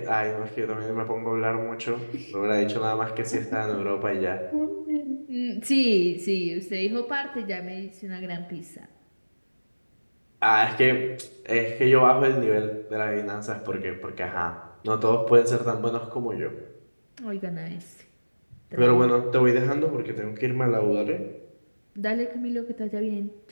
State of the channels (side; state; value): both; inverted; correlation -1.00